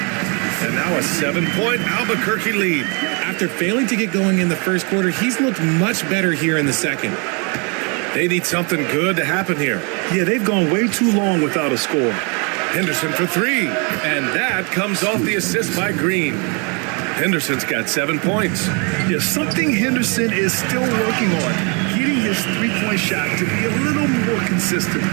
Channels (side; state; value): left; quieter; 34.0 dB